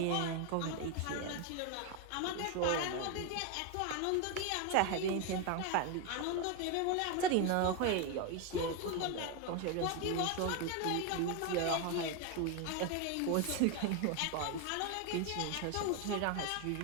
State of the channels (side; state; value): both; different; correlation 0.01